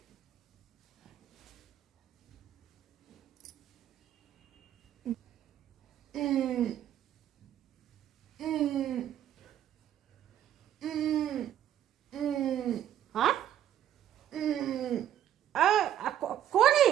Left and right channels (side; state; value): left; quieter; 11.0 dB